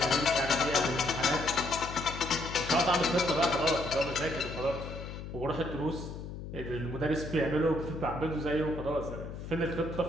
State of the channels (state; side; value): noise; left; hum, 9 dB below the sound